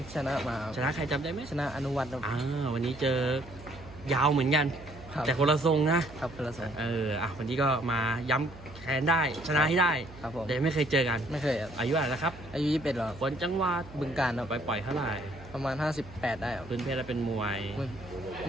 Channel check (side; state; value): right; noise; hum, 18 dB below the sound